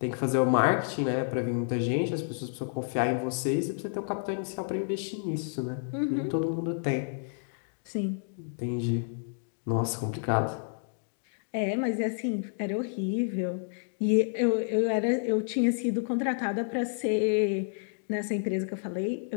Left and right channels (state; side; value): silent; right; digital silence